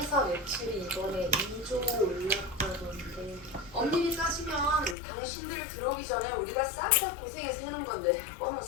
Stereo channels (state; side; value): drops out; right; at 5.0 s